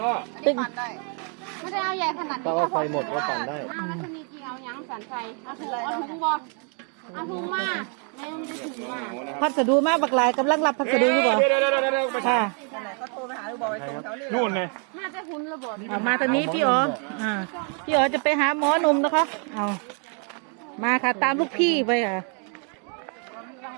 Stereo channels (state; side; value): quieter; left; 39.8 dB